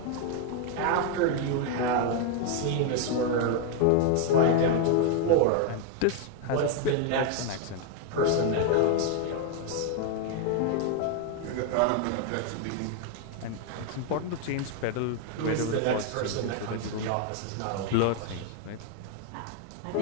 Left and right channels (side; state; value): both; different; correlation 0.01